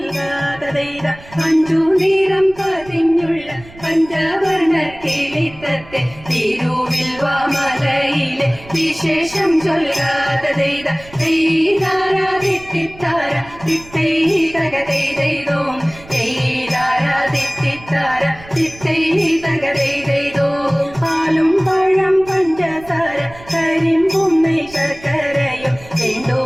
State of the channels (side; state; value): right; noise; rumble, 20 dB below the sound